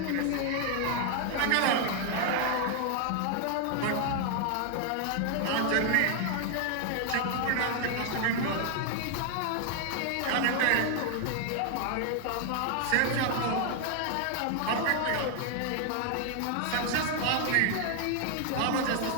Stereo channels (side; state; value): both; different; correlation 0.00